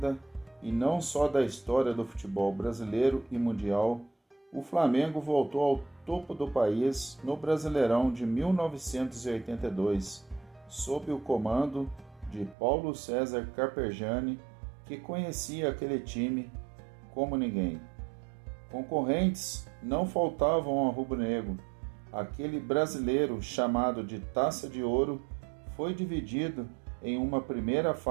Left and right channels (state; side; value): drops out; left; at 12.6 s